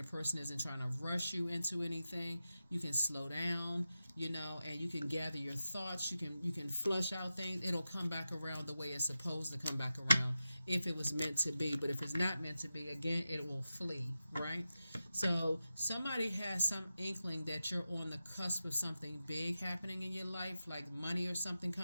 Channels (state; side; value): inverted; both; correlation -0.92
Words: person isn't trying to rush you into anything. You can slow down, and you can gather your thoughts. You can flush out things. It'll come back around the way it's supposed to come back around if it was meant to be. But if it's not meant to be, again, it will flee, right? So somebody has some inkling that you're on the cusp of something big happening in your life, like money or something